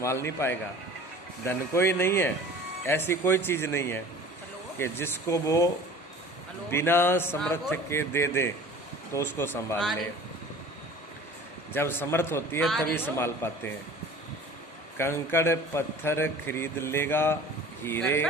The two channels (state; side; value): normal; both; correlation 0.43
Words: नहीं पाएगा। धन कोई नहीं है, ऐसी कोई चीज़ नहीं है कि जिसको वो बिना समर्थ के दे दे तो उसको संभाल ले। जब समर्थ होती है तभी संभाल पाते हैं। कंकड़ पत्थर खरीद लेगा, हीरे